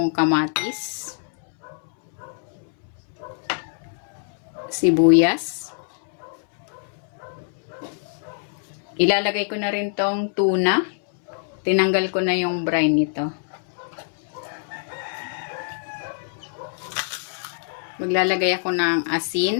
kamatis, sibuyas. Ilalagay ko na rin tong tuna. Tinanggal ko na yung brine nito. Maglalagay ako ng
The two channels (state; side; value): silent; right; 62 dB below the other